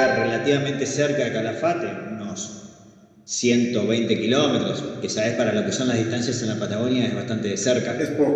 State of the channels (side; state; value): both; identical; correlation 1.00